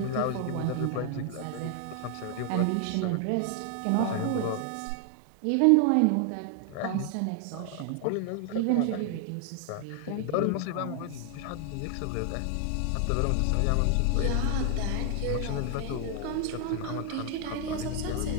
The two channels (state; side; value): different; both; correlation 0.00